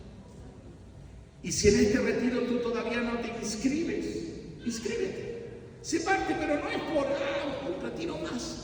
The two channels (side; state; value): both; identical; correlation 1.00